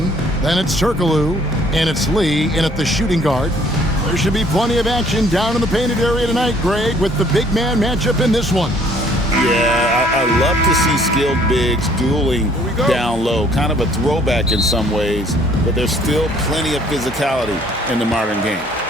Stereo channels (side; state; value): both; normal; correlation 0.60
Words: Then it's Turkoglu. And it's Lee in at the shooting guard. There should be plenty of action down in the painted area tonight, Greg, with the big man matchup in this one. Yeah, I love to see skilled bigs dueling down low. Kind of a throwback in some ways, but there's still plenty of physicality in the modern game.